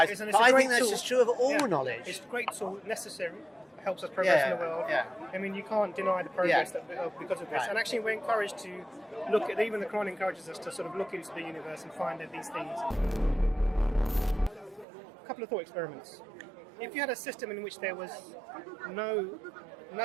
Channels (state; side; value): drops out; left; at 14.9 s